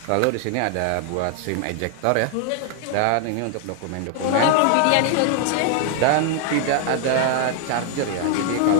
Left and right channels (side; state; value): both; different; correlation 0.00